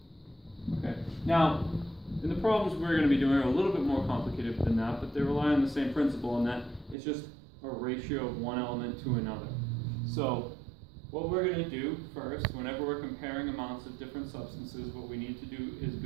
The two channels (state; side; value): drops out; left; at 7.0 s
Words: Okay. Now, in the problems we're going to be doing are a little bit more complicated than that, but they rely on the same principle in that it's just a ratio of one element to another. So what we're going to do first, whenever we're comparing amounts of different substances, what we need to do is